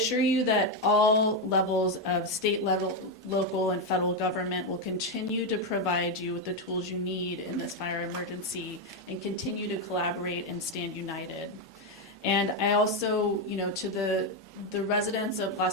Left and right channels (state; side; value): normal; both; correlation 0.06